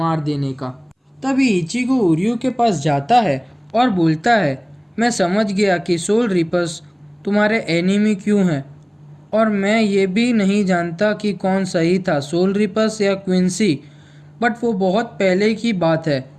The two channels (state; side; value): identical; both; correlation 1.00